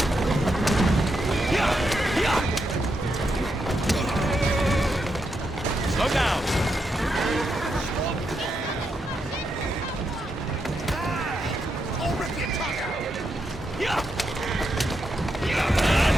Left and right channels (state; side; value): normal; both; correlation 0.83